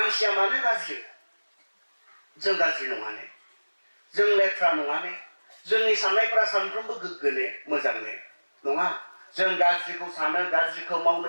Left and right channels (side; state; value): both; inverted; correlation -1.00